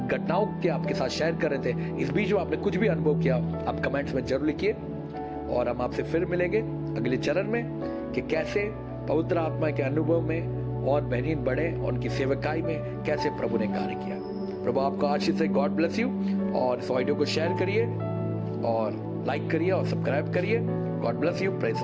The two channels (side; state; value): both; identical; correlation 1.00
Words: घटनाओं के आपके साथ शेयर कर रहे थे, इस बीच में आपने कुछ भी अनुभव किया, आप कमेंट्स में जरूर लिखिए। और हम आपसे फिर मिलेंगे अगले चरण में कि कैसे पवित्र आत्मा के अनुभव में और बेहतरीन बढ़े और उनकी सेवकाई में कैसे प्रभु ने कार्य किया। प्रभु आपको आशीष से। God bless you. और इस ऑडियो को शेयर करिए और लाइक करिए और सब्सक्राइब करिए। God bless you. Praise the